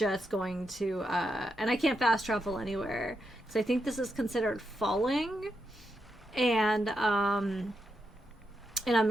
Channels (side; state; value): both; normal; correlation 0.85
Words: going to and I can't fast travel anywhere, so I think this is considered falling, and I'm